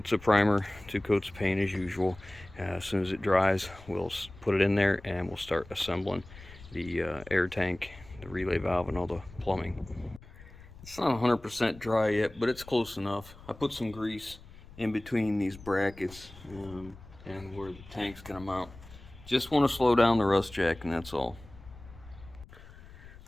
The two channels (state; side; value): noise; left; rumble, 19 dB below the sound